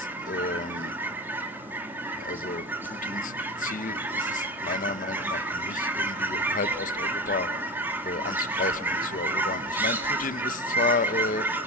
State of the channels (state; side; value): normal; both; correlation 0.27